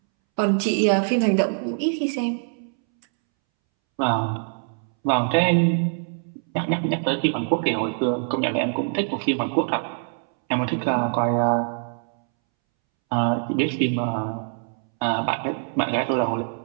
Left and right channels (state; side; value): silent; left; 63 dB below the other